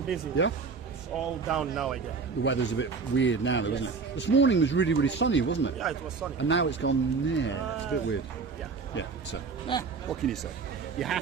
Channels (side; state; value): left; quieter; 5.0 dB